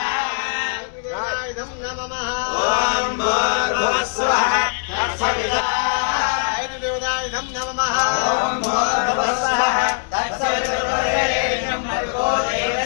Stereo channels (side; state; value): right; silent; 65 dB below the other